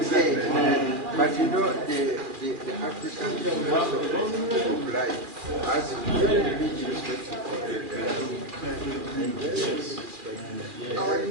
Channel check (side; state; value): left; late; 2.4 ms